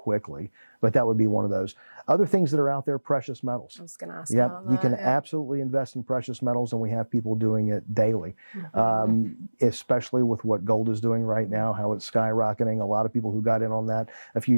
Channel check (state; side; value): inverted; both; correlation -1.00